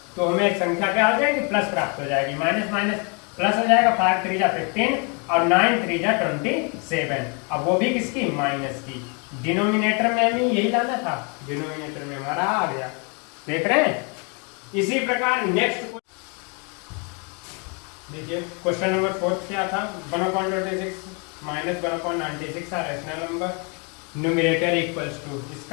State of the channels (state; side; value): quieter; right; 34.5 dB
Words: तो हमें संख्या क्या हो जाएगी, प्लस प्राप्त हो जाएगी। माइनस माइनस प्लस हो जाएगा, 5 3 जा 15 और 9 3 जा 27। अब वो भी किसकी, माइनस की। डिनोमिनेटर में हमें यही लाना था, डिनोमिनेटर में हमारा आ गया। देख रहे हैं। इसी प्रकार नेक्स्ट देखिए क्वेश्चन नंबर 4 क्या था, 1/26 माइनस 1/96 था rational number, numerator equals to.